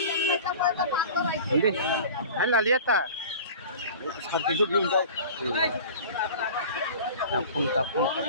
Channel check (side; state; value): both; inverted; correlation -0.39